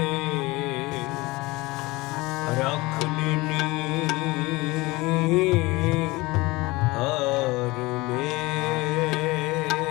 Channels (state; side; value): quieter; right; 22.2 dB